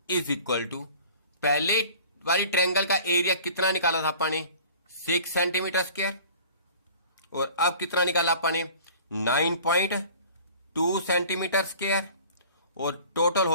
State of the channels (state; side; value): inverted; both; correlation -0.45